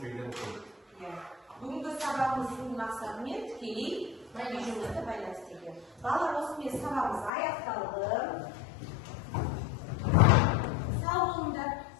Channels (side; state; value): right; drops out; at 7.3 s